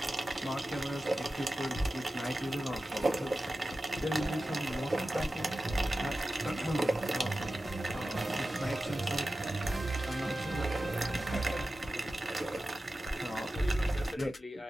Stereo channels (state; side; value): normal; both; correlation 0.94